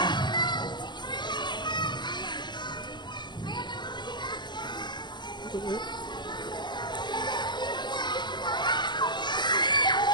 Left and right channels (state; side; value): late; right; 0.21 ms